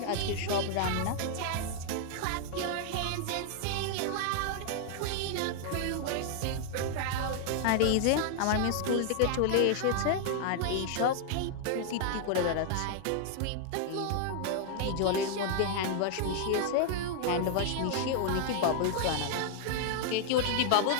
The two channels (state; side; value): different; both; correlation 0.00